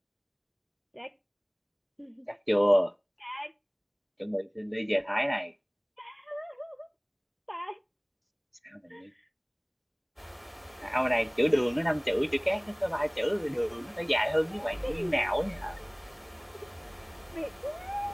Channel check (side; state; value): both; identical; correlation 1.00